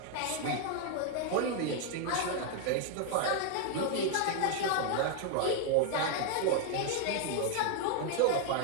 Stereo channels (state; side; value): different; both; correlation 0.00